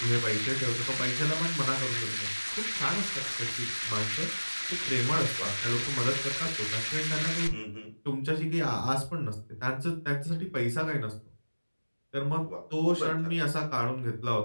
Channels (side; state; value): both; inverted; correlation -1.00